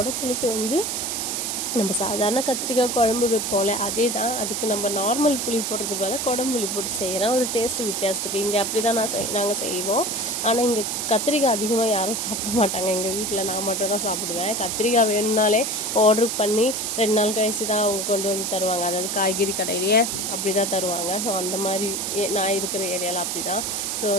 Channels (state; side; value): noise; right; hiss, 2 dB below the sound